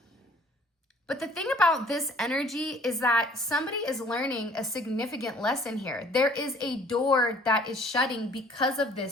But the thing about this energy is that somebody is learning a significant lesson here. There is a door that is shutting because of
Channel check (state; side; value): normal; both; correlation 0.55